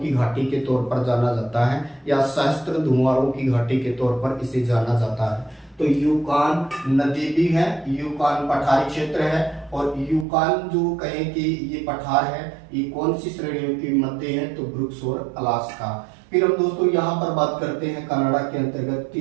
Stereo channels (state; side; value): drops out; left; at 10.2 s